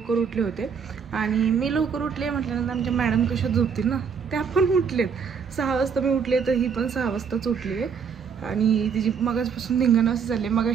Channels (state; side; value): quieter; left; 6.5 dB